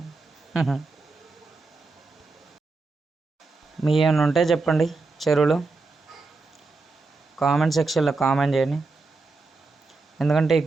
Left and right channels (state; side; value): quieter; left; 3.8 dB